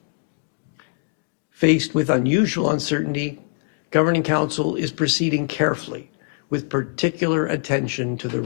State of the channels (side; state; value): right; silent; 60 dB below the other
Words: Faced with unusual uncertainty, Governing Council is proceeding carefully with particular attention to the